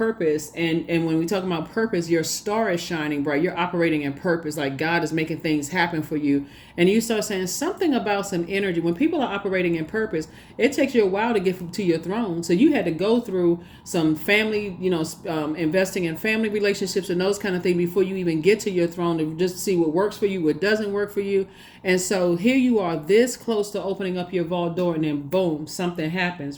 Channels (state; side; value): identical; both; correlation 1.00